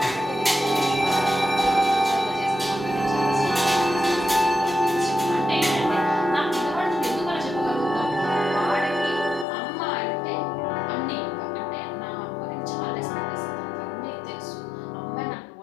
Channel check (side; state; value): right; drops out; at 9.5 s